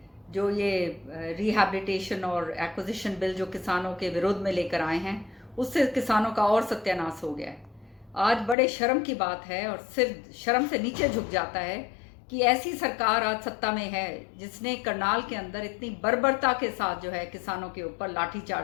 जो ये रिहैबिलिटेशन और एक्विजिशन बिल जो किसानों के विरोध में लेकर आए हैं, उससे किसानों का और सत्यानाश हो गया है। आज बड़े शर्म की बात है और सिर शर्म से नीचे झुक जाता है कि ऐसी सरकार आज सत्ता में है जिसने करनाल के अंदर इतनी बर्बरता के साथ जो है किसानों के ऊपर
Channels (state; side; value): drops out; right; at 8.6 s